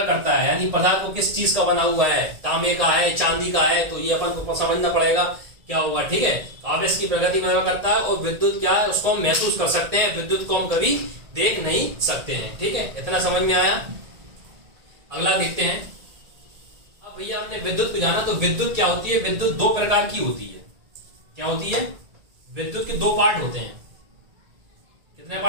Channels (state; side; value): late; left; 1.9 ms